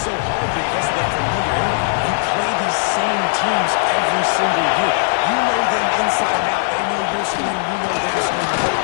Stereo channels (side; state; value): right; silent; digital silence